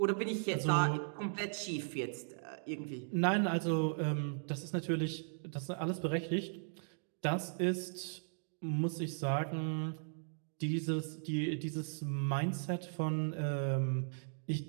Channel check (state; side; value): silent; left; digital silence